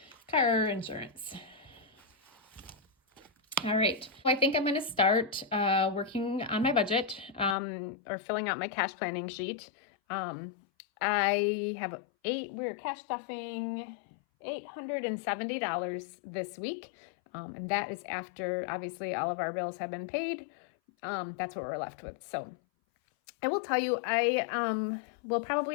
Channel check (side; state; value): right; drops out; at 7.6 s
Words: car insurance. All right, well, I think I'm going to start working on my budget or filling out my cash planning sheet. I have we're cash stuffing $870 this week, and that is after obviously all of our bills have been paid. That's what we're left with. So I will tell you, I will